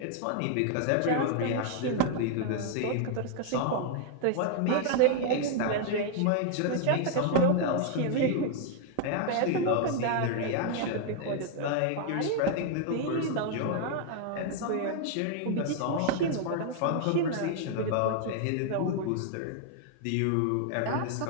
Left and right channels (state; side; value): different; both; correlation 0.00